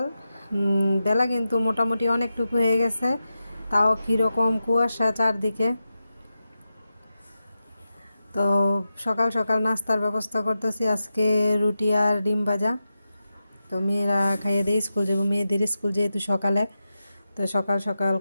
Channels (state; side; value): inverted; both; correlation -0.91